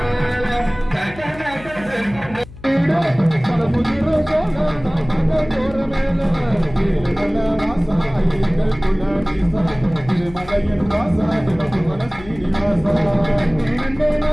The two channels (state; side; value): noise; left; hum, 17 dB below the sound